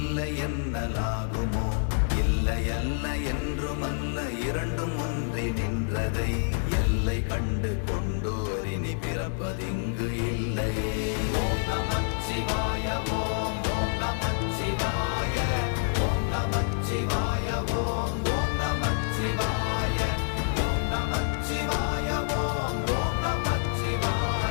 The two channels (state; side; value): silent; right; 60 dB below the other